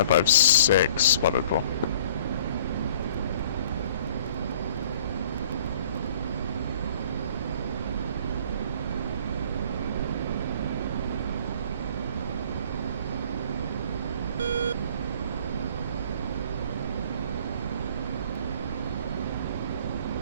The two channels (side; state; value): both; inverted; correlation -0.52